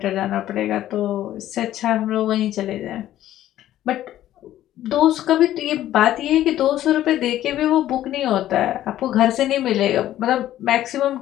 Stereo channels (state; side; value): quieter; right; 13.0 dB